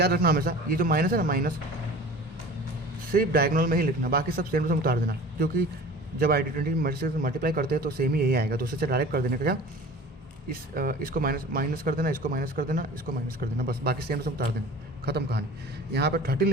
रखना हमेशा, ये जो माइनस है ना, माइनस सिर्फ डायगोनल में ही लिखना, बाकी सब सेम टू सेम उतार देना, क्योंकि जब ID20 से मल्टीप्लाई करते हैं तो सेम ही यही आएगा, दूसरे से डायरेक्ट कर देने का क्या, इसको माइनस कर देना, इसको माइनस कर देना, इसको माइनस कर देना, बस बाकी सेम टू सेम उतार देना, खत्म कहानी। यहाँ पर 13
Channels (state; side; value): normal; both; correlation 0.41